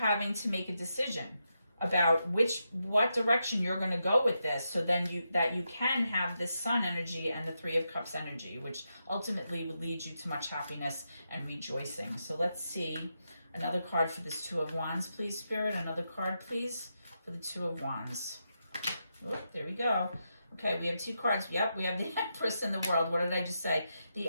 to make a decision about what direction you're going to go with this, so then you can have this Sun energy and the Three of Cups energy, which ultimately will lead you to much happiness and rejoicing. So let's see another card for this Two of Wands, please, Spirit. Another card, please, for the Two of Wands. Oh, there we go. Okay, we have two cards. Yep, we have the Empress in the World. What did I just say? The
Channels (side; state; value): both; inverted; correlation -0.85